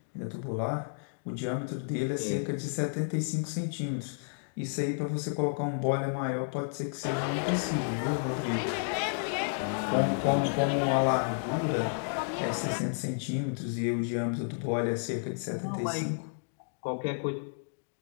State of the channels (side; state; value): right; silent; digital silence